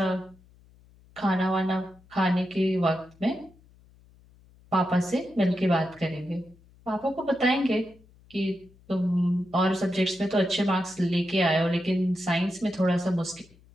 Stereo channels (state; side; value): noise; left; hum, 28 dB below the sound